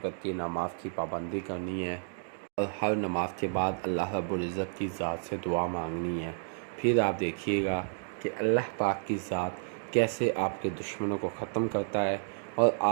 کی نماز کی پابندی کرنی ہے اور ہر نماز کے بعد اللہ رب العزت کی ذات سے دعا مانگنی ہے۔ پھر آپ دیکھیے گا کہ اللہ پاک کی ذات کیسے آپ کے دشمنوں کو ختم کرتا ہے اور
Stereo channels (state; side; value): silent; left; digital silence